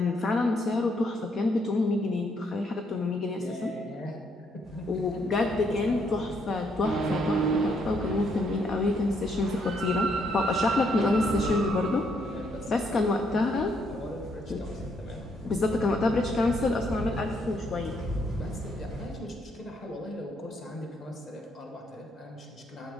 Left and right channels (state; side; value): normal; both; correlation 0.73